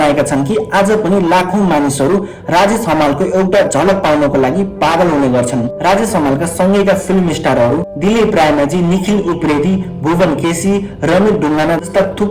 छन् कि आज पनि लाखौं मानिसहरू राजेश हमालको एउटा झलक पाउनको लागि पागल हुने गर्छन्। राजेश हमालका सँगैका फिल्म स्टारहरू दिलीप रायमाझी, निखिल उप्रेती, भुवन केसी, रमित ढुङ्गाना जस्ता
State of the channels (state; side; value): identical; both; correlation 1.00